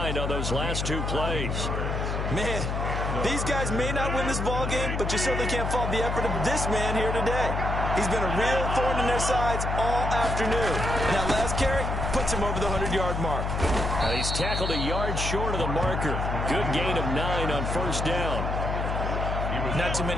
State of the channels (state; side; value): noise; left; hum, 2 dB below the sound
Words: on those last 2 plays. Man, these guys may not win this ball game, but you certainly can't fault the effort of this man here today. He's been a real thorn in their sides all afternoon. And that last carry puts him over the 100-yard mark. He's tackled a yard short of the marker. Good gain of 9 on first down. Not too